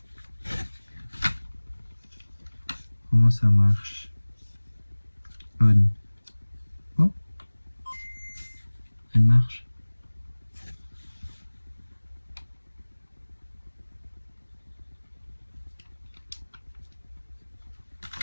Comment ça marche? On. Oh, elle marche.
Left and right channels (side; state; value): both; inverted; correlation -1.00